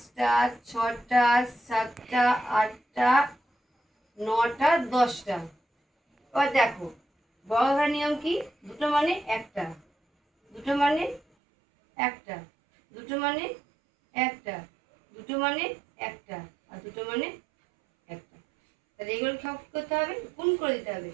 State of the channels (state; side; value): drops out; left; at 11.2 s